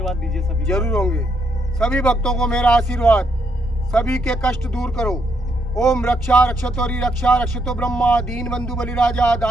दीजिए सभी। जरूर होंगे। सभी भक्तों को मेरा आशीर्वाद। सभी के कष्ट दूर करो। ओम रक्षा रक्षतोरी रक्षा रक्षतो ब्रह्मा दीन बंधु बलिराजा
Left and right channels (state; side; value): normal; both; correlation 0.76